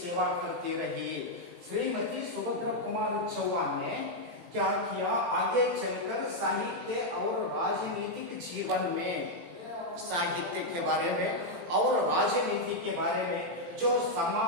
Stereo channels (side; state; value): left; late; 18 ms